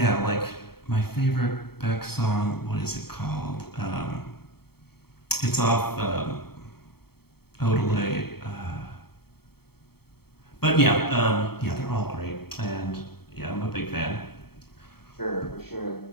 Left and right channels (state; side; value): late; right; 0.95 ms